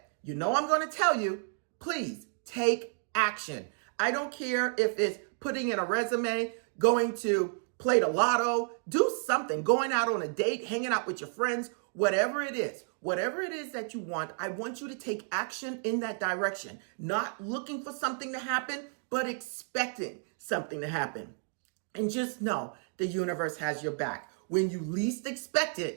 you know I'm going to tell you, please take action. I don't care if it's putting in a resume, going to play the lotto, do something, going out on a date, hanging out with your friends, whatever it is that you want, I want you to take action in that direction. Not looking for something to happen, but expecting something to happen. And just know the universe has your back. When you least expect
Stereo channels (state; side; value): silent; left; 57 dB below the other